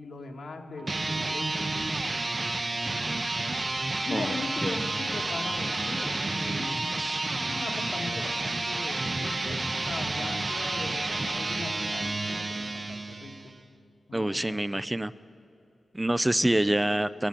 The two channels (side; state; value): both; normal; correlation 0.97